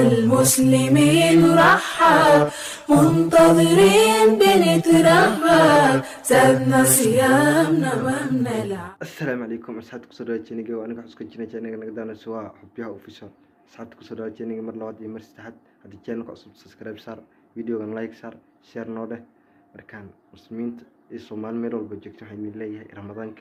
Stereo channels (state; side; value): identical; both; correlation 1.00